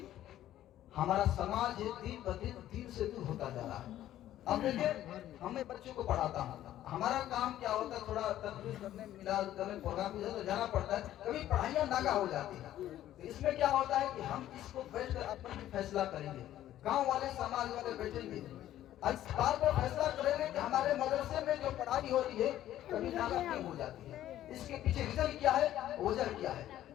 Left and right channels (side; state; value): right; quieter; 12.8 dB